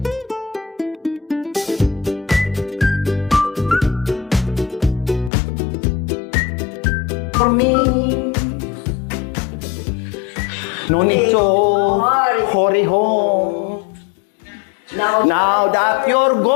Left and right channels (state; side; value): drops out; right; at 5.3 s